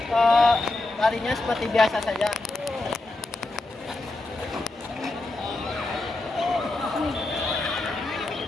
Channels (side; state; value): right; quieter; 3.0 dB